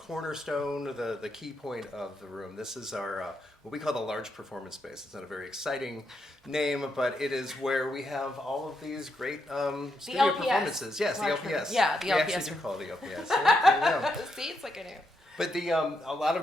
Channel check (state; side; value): normal; both; correlation 0.81